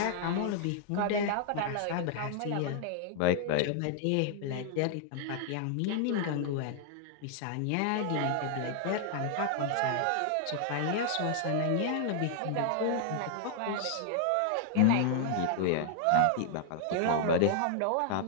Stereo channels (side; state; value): both; different; correlation 0.00